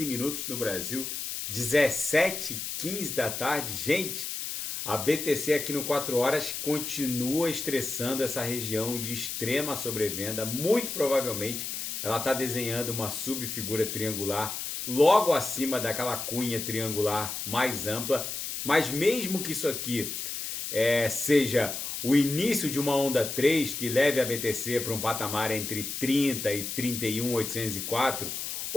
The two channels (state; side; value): noise; left; hiss, 5 dB below the sound